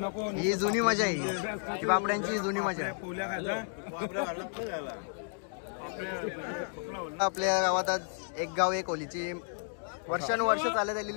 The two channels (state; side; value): silent; right; 56 dB below the other